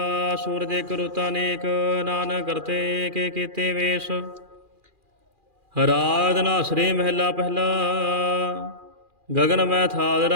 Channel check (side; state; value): left; late; 2.4 ms